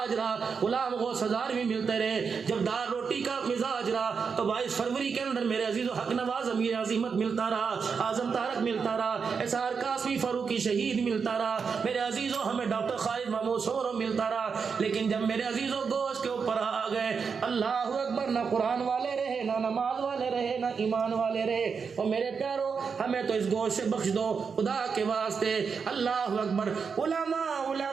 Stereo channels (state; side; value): quieter; left; 5.8 dB